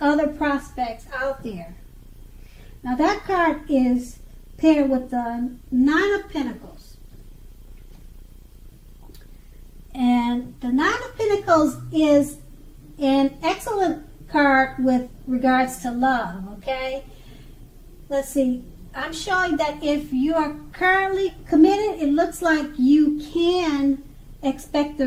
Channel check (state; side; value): identical; both; correlation 1.00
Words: prospects out there. Now that card is paired with the Nine of Pentacles. And the Nine of Pentacles is an excellent card with regards to love, okay? Let's see. I'm showing that if you are currently committed, it looks like you can expect